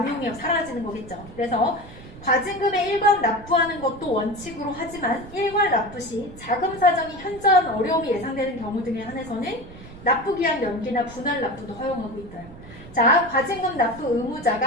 사라지는 거겠죠. 그래서 과징금의 일괄 납부하는 것도 원칙으로 하지만 일괄 납부 시 자금 사정이 현저한 어려움이 예상되는 경우 등에 한해서는 납부 기한 연기나 분할 납부도 허용하고 있어요. 자, 과징금 납부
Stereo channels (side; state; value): right; noise; rumble, 17 dB below the sound